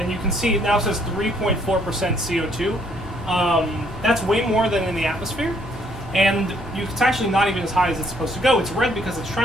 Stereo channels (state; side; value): normal; both; correlation 0.67